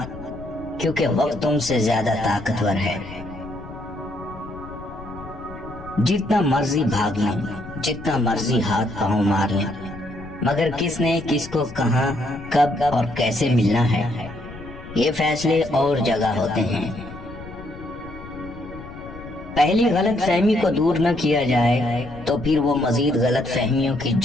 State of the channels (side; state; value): left; noise; rumble, 15 dB below the sound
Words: کیونکہ وقت تم سے زیادہ طاقتور ہے۔ جتنا مرضی بھاگ لیں، جتنا مرضی ہاتھ پاؤں مار لیں، مگر کس نے کس کو کہاں کب اور کیسے ملنا ہے یہ فیصلے اور جگہ ہوتے ہیں۔ پہلی غلط فہمی کو دور نہ کیا جائے تو پھر وہ مزید غلط فہمیوں کی